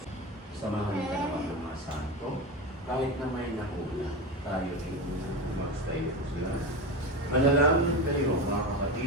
Samahan ka naman ng mga santo, kahit na may nakuna, tayo rin mag-stay po sila. Manalangin kayo, mga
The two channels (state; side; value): normal; both; correlation 0.21